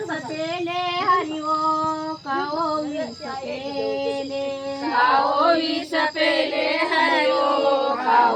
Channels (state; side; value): identical; both; correlation 1.00